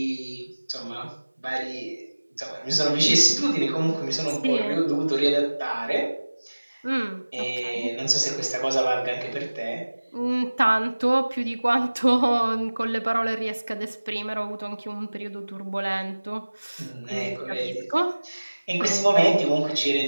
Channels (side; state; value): both; inverted; correlation -1.00